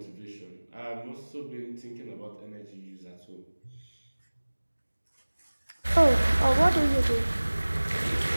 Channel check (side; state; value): both; inverted; correlation -1.00